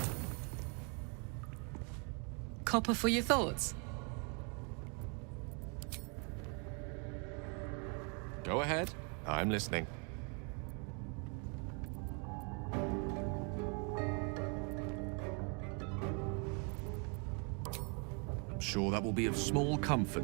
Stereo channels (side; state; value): left; quieter; 36.1 dB